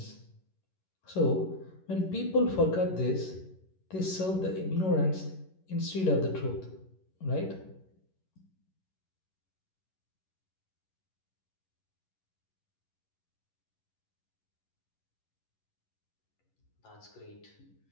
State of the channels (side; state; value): right; late; 11 ms